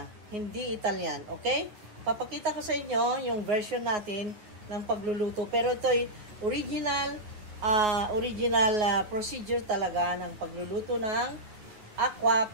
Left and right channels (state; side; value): late; left; 9.5 ms